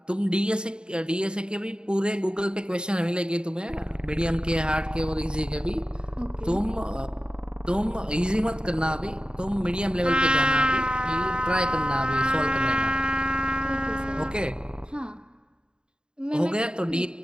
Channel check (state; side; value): late; left; 0.049 ms